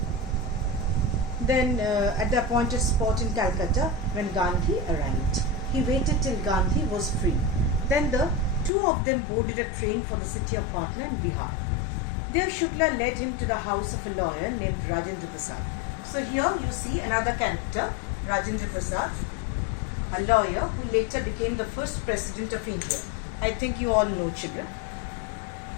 then at the appointed spot in Calcutta when Gandhi arrived. He waited till Gandhi was free. Then the two of them boarded a train for the city of Patna in Bihar. There Shukla led him to the house of a lawyer named Rajendra Prasad. So here you see another character, Rajendra Prasad, a lawyer who later became the first president of India. I think you all know, children.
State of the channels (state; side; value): drops out; right; at 8.7 s